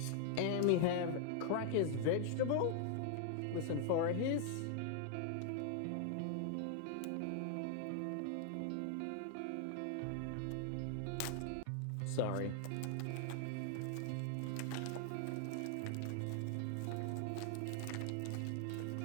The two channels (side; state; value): both; different; correlation 0.00